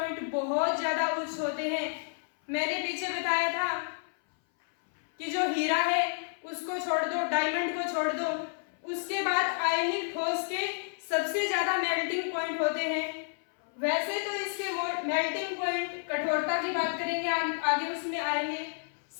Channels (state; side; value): silent; right; 58 dB below the other